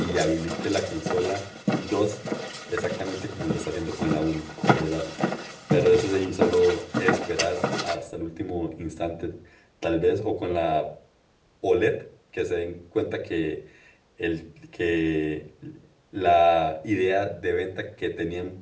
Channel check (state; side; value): identical; both; correlation 1.00